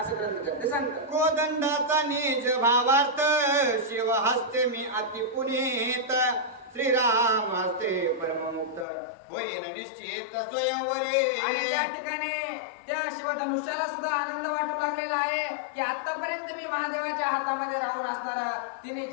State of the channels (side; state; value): right; drops out; at 8.8 s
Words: ग्रंथकर्ते सांगतात. कोदंडाचा निज भावार्थ शिव हस्ते मी अति पुनीत श्रीराम हस्ते परममुक्त होईन निश्चित स्वयंवरे. आणि त्या ठिकाणी त्या शिवधनुष्याला सुद्धा आनंद वाटू लागलेला आहे की आतापर्यंत मी महादेवाच्या हातामध्ये राहून असणार तिने